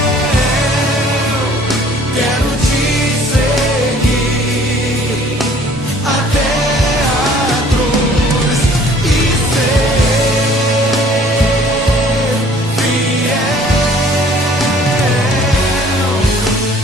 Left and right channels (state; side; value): normal; both; correlation 0.55